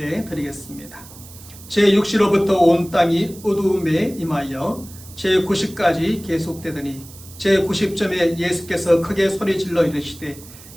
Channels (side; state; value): right; noise; hiss, 19 dB below the sound